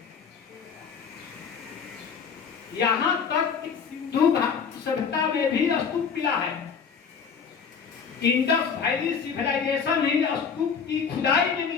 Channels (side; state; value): right; quieter; 6.3 dB